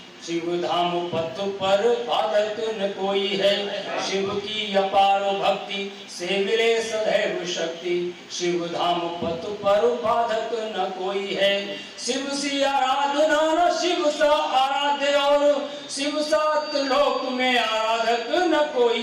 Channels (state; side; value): identical; both; correlation 1.00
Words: शिव धाम पथ पर बाधक न कोई है। शिव की अपार भक्ति से मिले सदैव शक्ति, शिव धाम पथ पर बाधक न कोई है। शिव सी आराधना न शिव सा आराध्य, और शिव सात लोक में आराधक न कोई